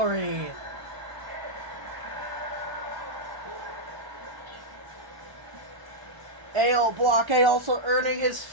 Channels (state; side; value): late; left; 1.1 ms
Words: Ale Blockade also earning his